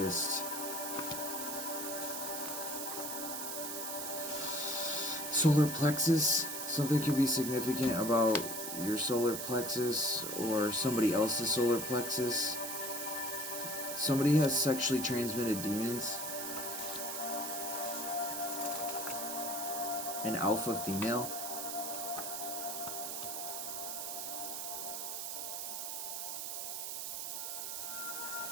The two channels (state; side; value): noise; right; hiss, 4 dB below the sound